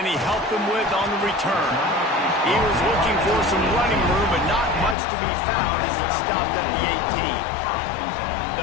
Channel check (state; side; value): drops out; right; at 5.0 s